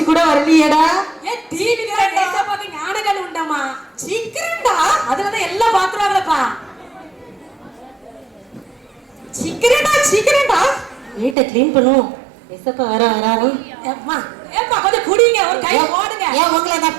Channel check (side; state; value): left; drops out; at 11.4 s